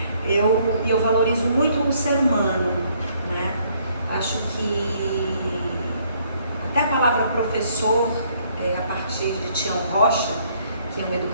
eu valorizo muito o ser humano, né? Acho que até a palavra professor, a partir de Tião Rocha, que é um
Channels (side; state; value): both; inverted; correlation -0.66